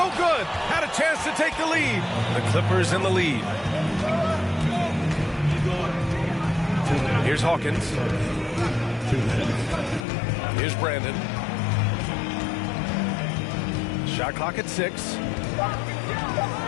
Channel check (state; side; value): drops out; right; at 10.1 s